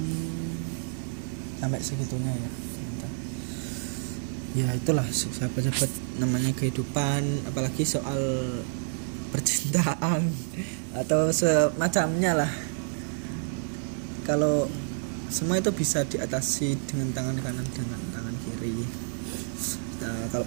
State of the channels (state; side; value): silent; left; digital silence